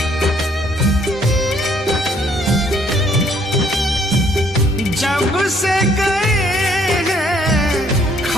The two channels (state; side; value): normal; both; correlation 0.64